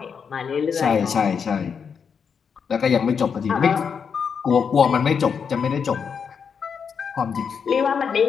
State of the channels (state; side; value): quieter; right; 6.5 dB